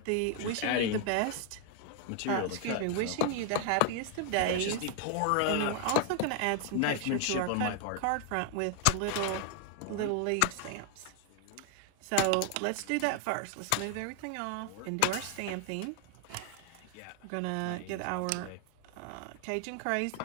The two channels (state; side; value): different; both; correlation 0.00